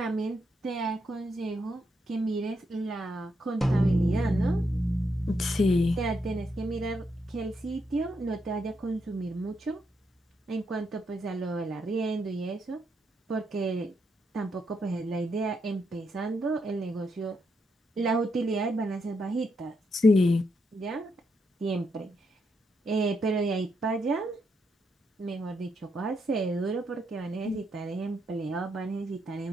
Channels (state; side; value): normal; both; correlation 0.80